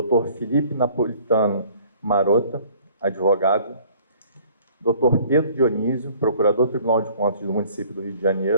Felipe Napolitano Marota, advogado, doutor Pedro Dionísio, procurador do Tribunal de Contas do município do Rio de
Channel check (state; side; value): inverted; both; correlation -0.55